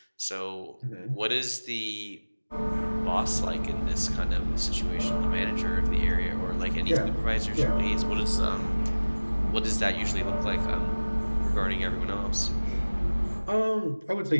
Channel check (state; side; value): inverted; both; correlation -1.00